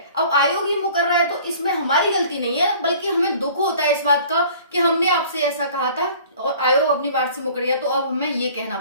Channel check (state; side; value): inverted; both; correlation -0.49